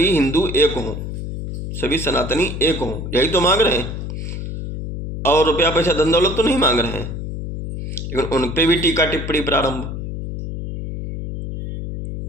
हिंदू एक हों, सभी सनातनी एक हों, यही तो मांग रहे हैं। और रुपया पैसा धन दौलत तो नहीं मांग रहे हैं। लेकिन उन पे भी टीका टिप्पणी प्रारंभ।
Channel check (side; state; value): left; noise; hum, 6 dB below the sound